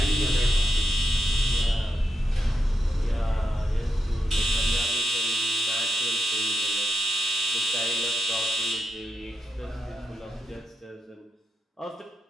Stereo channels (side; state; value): both; normal; correlation 0.83